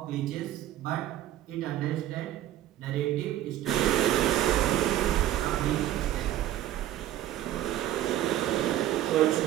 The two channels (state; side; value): quieter; left; 12.9 dB